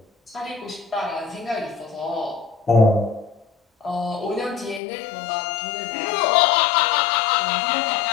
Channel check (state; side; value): drops out; right; at 4.8 s